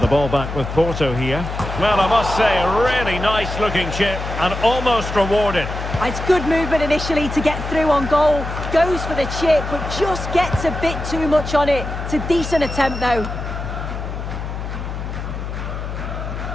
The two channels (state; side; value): noise; left; hum, 6 dB below the sound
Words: the ball back with Porto here. Well, I must say, a really nice-looking chip and almost rewarded. It's good movement initially to get through on goal. Goes for the chip, but just gets a bit too much on it. It's a decent attempt, though.